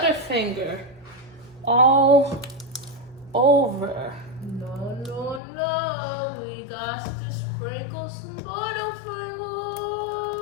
all over. No. We got to sprinkle some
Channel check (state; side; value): drops out; right; at 5.4 s